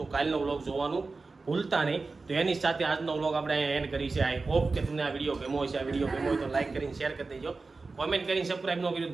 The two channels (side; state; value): left; quieter; 3.9 dB